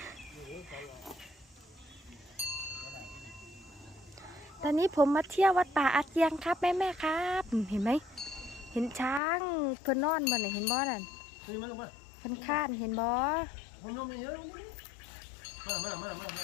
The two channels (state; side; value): drops out; right; at 9.2 s